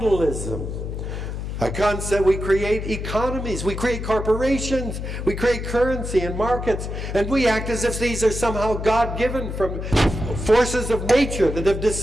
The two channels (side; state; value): left; noise; hum, 5 dB below the sound